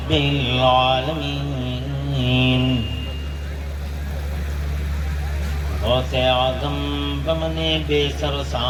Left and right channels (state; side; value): identical; both; correlation 1.00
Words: العالمين غوث اعظم بمن بے سر